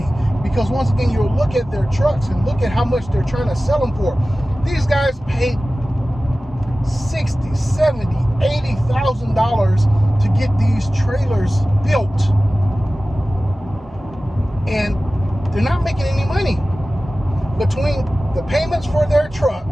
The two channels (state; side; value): normal; both; correlation 0.96